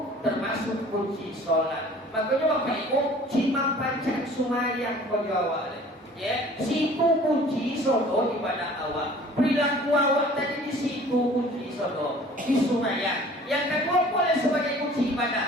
termasuk kunci sholat makanya Bapak Ibu cimang pancang sumayang kau jawab ya, situ kunci sodo ibadah awak. Perilaku awak tadi di situ kunci sodo di sumayang. Yang kedua boleh sebagai kunci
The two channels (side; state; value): both; normal; correlation 0.49